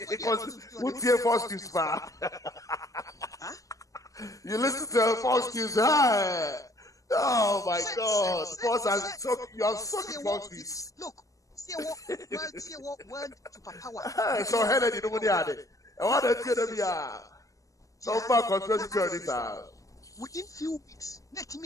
because who tear force news far? You listen to false news. Oh my God! You are sucking false news. Look, see what word to power. So Helen, you know what they are. I want to tell them so far conspiracy theories. Within few weeks, let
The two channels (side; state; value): right; late; 0.16 ms